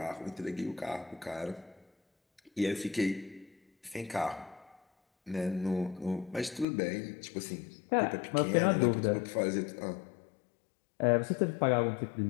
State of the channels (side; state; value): right; drops out; at 6.7 s